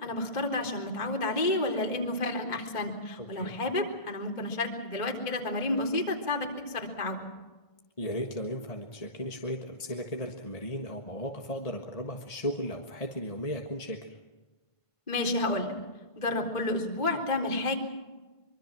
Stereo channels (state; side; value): late; right; 1.5 ms